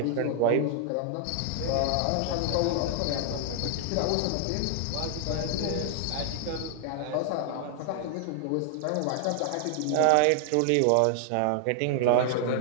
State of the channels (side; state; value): both; different; correlation 0.00